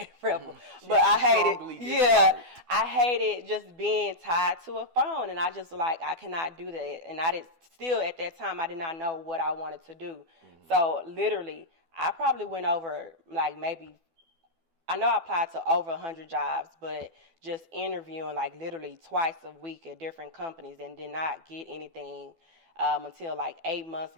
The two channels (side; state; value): left; late; 12 ms